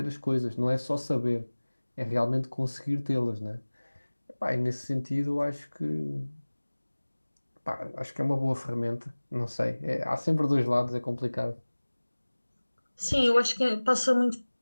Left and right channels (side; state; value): both; inverted; correlation -1.00